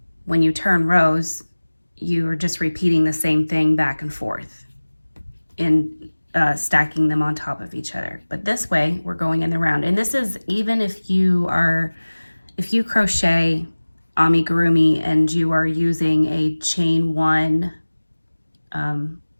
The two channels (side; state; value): both; inverted; correlation -1.00